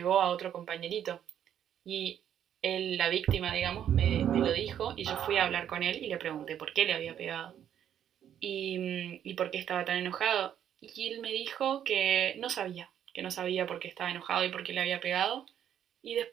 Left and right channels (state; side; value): quieter; left; 9.8 dB